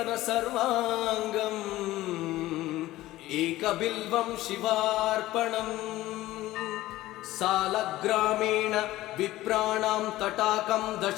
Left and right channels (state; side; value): quieter; right; 16.4 dB